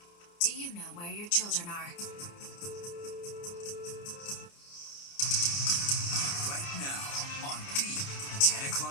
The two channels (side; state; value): right; late; 29 ms